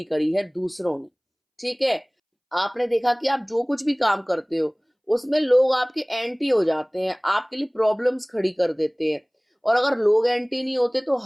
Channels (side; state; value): both; identical; correlation 1.00